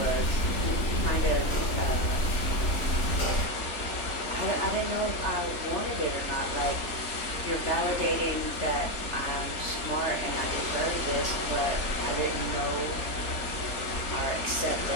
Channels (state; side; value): late; right; 3.4 ms